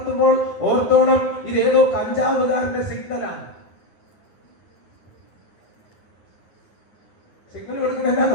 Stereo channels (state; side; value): late; right; 9.7 ms